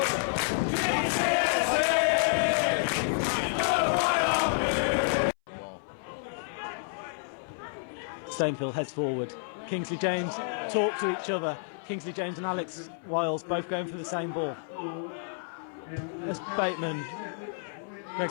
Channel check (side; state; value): right; silent; 58 dB below the other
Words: Stainfield heads forward. Kingsley James talk to each other. Kingsley James and Alex Wiles both going for the same ball. As Bateman, Greg